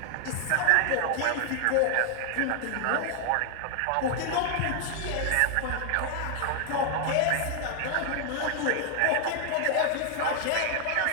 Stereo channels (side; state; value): both; different; correlation 0.00